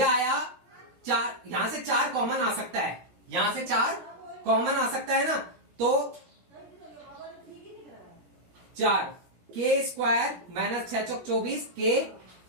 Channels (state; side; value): late; left; 17 ms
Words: आया 4, यहां से 4 कॉमन आ सकता है, यहां से 4 कॉमन आ सकता है ना, तो 4 k स्क्वायर माइनस 6 चौक 24 k